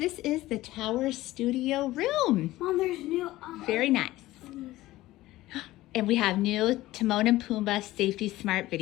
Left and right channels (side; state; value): right; quieter; 16.9 dB